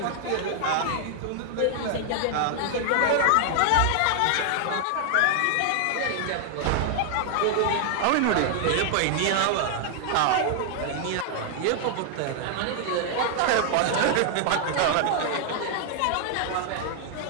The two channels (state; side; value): different; both; correlation 0.00